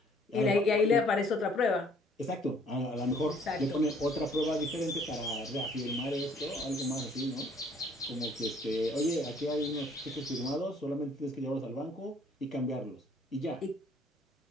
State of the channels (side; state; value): both; normal; correlation 0.60